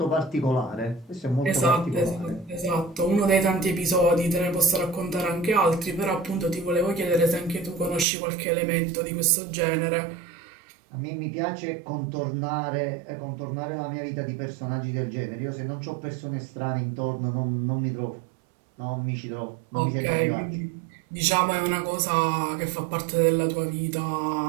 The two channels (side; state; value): left; drops out; at 8.1 s